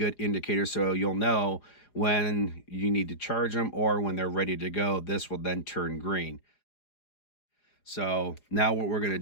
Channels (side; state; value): right; late; 4.9 ms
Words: indicator, so you'll know when you need to charge them or when they're ready to go. This will then turn green. So now what we're going to